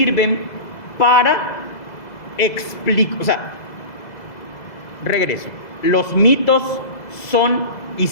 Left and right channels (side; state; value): right; late; 2.0 ms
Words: para explicar, regreso. Los mitos son